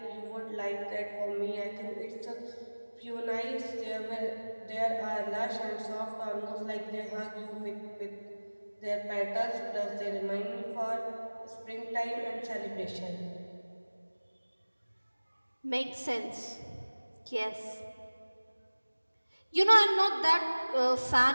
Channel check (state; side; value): inverted; both; correlation -1.00